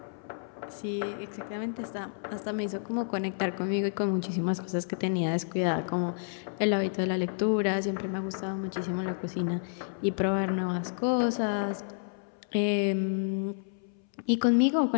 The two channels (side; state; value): right; silent; 58 dB below the other